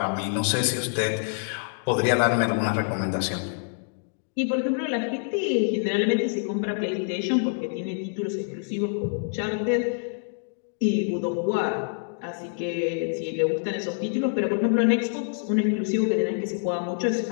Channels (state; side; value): silent; right; digital silence